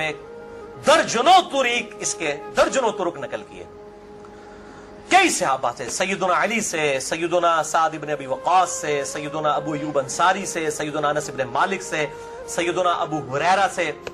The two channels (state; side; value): identical; both; correlation 1.00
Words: درجنوں طریق، اس کے درجنوں طرق نقل کیے کئی صحابہ سے، سیدنا علی سے، سیدنا سعد بن ابی وقاص سے، سیدنا ابو ایوب انصاری سے، سیدنا انس بن مالک سے، سیدنا ابو ہریرہ سے،